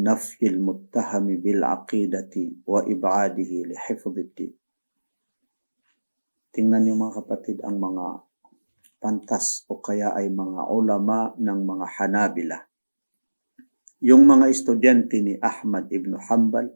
nafyil muttahami bil aqidati wa ib'adihi li hifdhiddin. Tingnan niyo mga kapatid ang mga pantas o kaya ay mga ulama ng mga Hanabila. Yung mga estudyante ni Ahmad ibn Hanbal,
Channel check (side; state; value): both; inverted; correlation -1.00